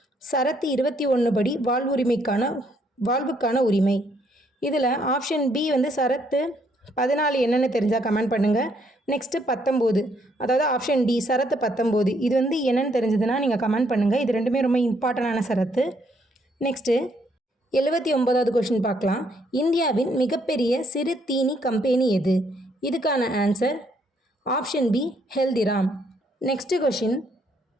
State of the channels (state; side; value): normal; both; correlation 0.70